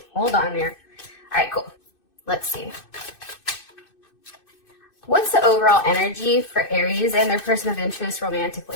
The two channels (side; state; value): right; late; 2.6 ms